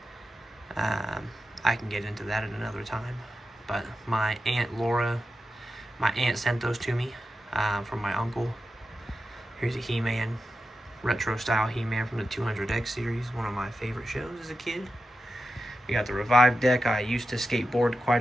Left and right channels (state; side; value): normal; both; correlation 0.90